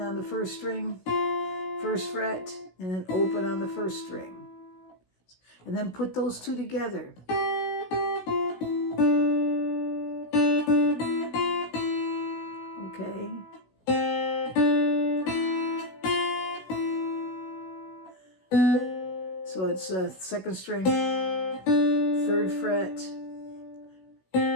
the first string, first fret, and then open on the first string. And then put those two together. Okay. So it's second string, third fret,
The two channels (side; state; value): right; late; 16 ms